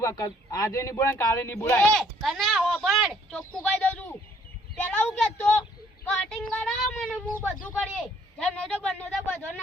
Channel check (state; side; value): normal; both; correlation 0.63